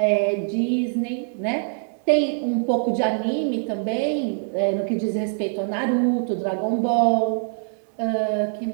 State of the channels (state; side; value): silent; left; 63 dB below the other